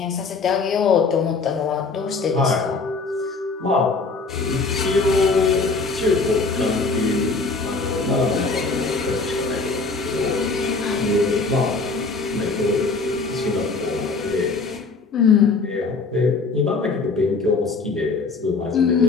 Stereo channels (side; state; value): right; quieter; 4.1 dB